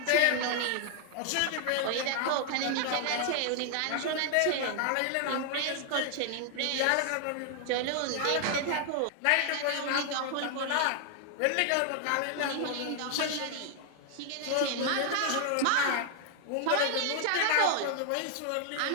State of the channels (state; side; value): different; both; correlation 0.00